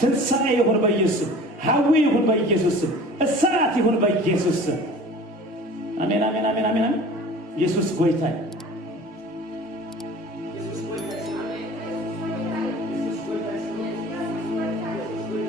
ይሁን በኢየሱስ ሐዊ ይሁን በኢየሱስ እሳት ይሁን በኢየሱስ አሜን አሜን አሜን አሜን ኢየሱስ ጎይታ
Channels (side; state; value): both; normal; correlation 0.43